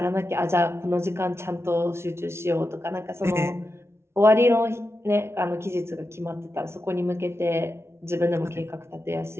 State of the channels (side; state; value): left; late; 0.12 ms